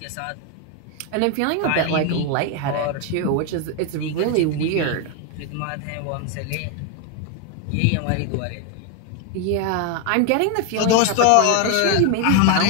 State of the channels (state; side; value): different; both; correlation 0.01